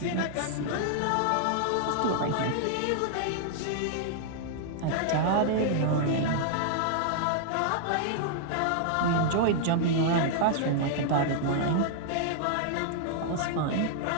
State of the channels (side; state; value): both; different; correlation -0.01